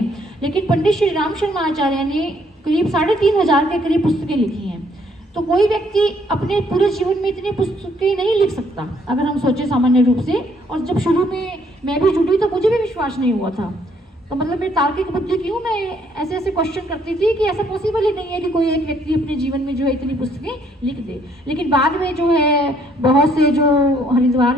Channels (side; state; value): both; normal; correlation 0.66